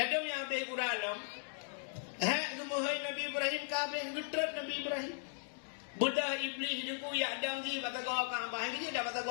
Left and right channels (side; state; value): right; silent; digital silence